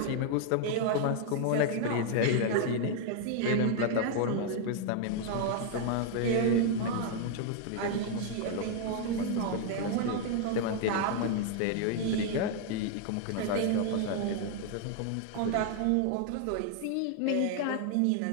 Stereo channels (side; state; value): both; different; correlation 0.00